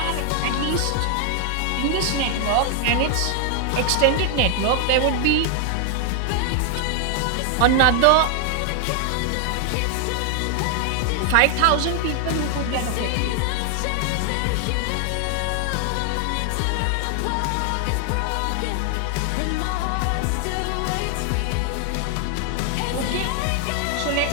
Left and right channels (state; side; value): different; both; correlation 0.00